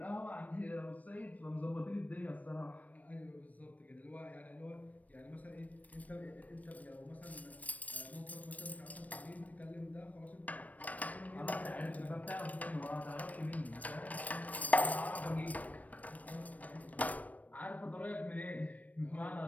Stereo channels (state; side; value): late; right; 0.072 ms